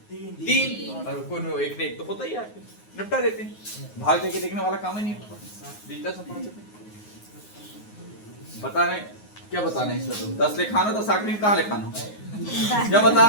3 और कोई एक ने एक तो होता ही है, निपटा देते हैं। भाग देके देखने वाला काम ही नहीं होता। बताने क्या बताना है इसमें? तो 10 लिखानो तो साकरी में कहाँ लिखानो? क्या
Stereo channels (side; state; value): right; late; 9.5 ms